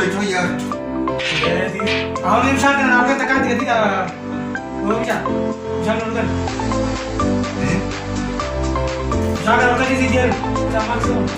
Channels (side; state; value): both; identical; correlation 1.00